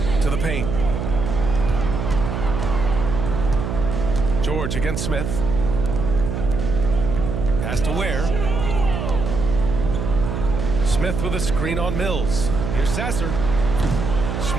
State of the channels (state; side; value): noise; right; hum, 3 dB below the sound